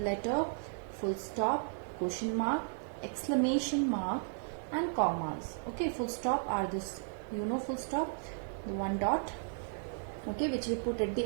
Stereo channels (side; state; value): left; silent; 55 dB below the other